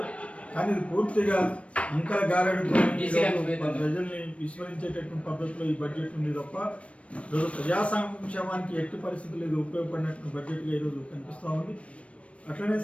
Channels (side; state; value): right; late; 0.062 ms